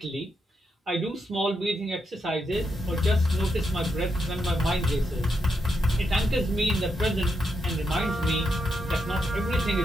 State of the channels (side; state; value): both; normal; correlation 0.82